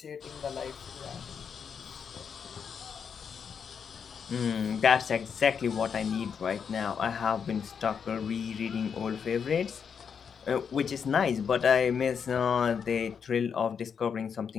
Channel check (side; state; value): right; quieter; 6.8 dB